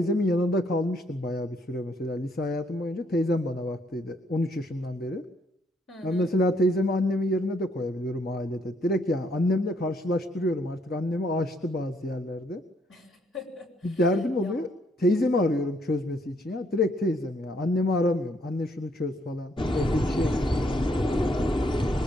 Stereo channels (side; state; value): both; normal; correlation 0.70